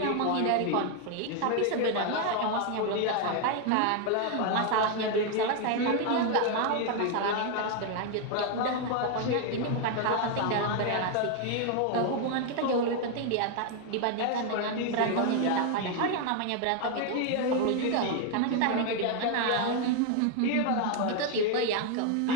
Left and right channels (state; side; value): different; both; correlation 0.01